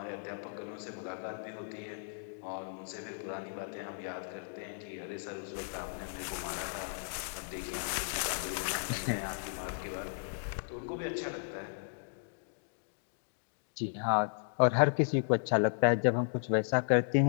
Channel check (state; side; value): silent; right; digital silence